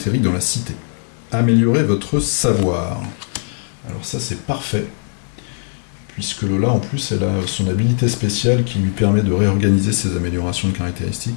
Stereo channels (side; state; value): right; silent; 64 dB below the other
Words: dans la cité. Améliorez votre savoir. Alors ça, c'est parfait, puisque Lola, en plus, elle a son habilité spéciale qui lui permet de réorganiser ses améliorations de